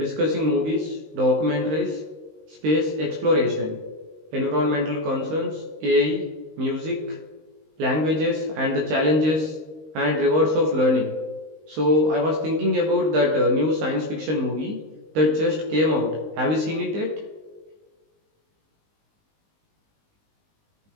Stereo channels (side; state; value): left; late; 19 ms